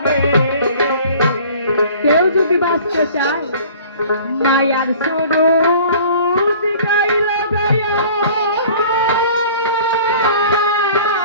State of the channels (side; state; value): both; inverted; correlation -0.48